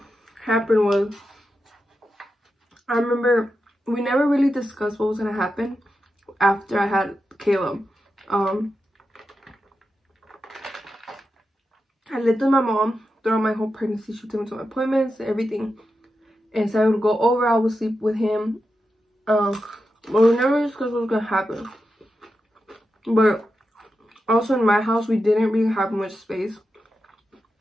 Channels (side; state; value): both; normal; correlation 0.89